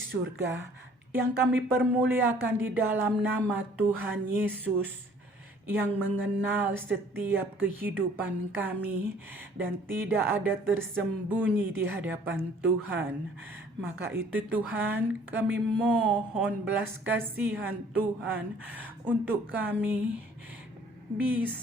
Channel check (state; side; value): normal; both; correlation 0.56